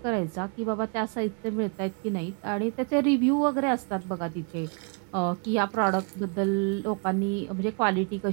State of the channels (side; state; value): left; quieter; 38.6 dB